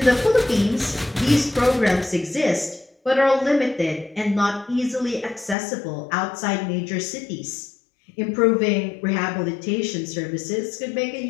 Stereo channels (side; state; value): right; drops out; at 5.6 s